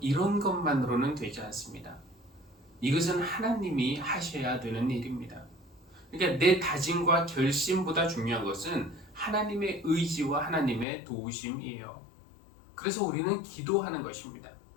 이런 것만으로는 되지 않습니다. 이것은 하나님이 하셔야 되는 일입니다. 그러니까 내 다짐과 결심보다 중요한 것은 하나님의 의지와 하나님의 도우심이에요. 그래서 우리는 기도하는 것입니다.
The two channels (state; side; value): drops out; right; at 10.9 s